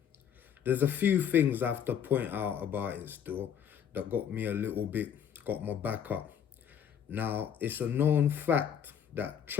There's a few things I have to point out about it still that got me a little bit, got my back up. Now, it's a known fact that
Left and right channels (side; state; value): right; quieter; 8.4 dB